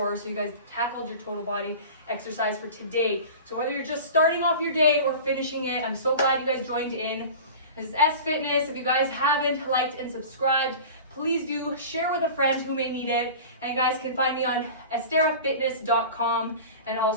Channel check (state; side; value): inverted; both; correlation -0.36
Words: So you guys tackled your total body exercise for today. So whether you're just starting off your day or finishing it, I'm so glad you guys joined in. This is S Fitness. If you guys haven't liked and subscribed, please do share with a friend who may need it. And you guys can find me on esterafitness.com and